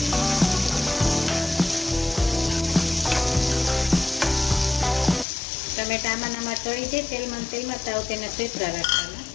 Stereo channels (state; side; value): drops out; right; at 5.2 s